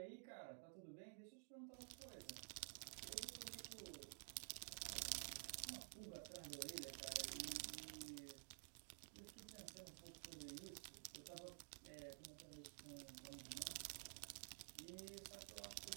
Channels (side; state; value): left; silent; digital silence